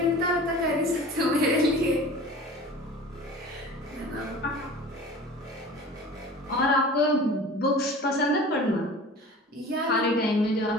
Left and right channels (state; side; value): normal; both; correlation 0.41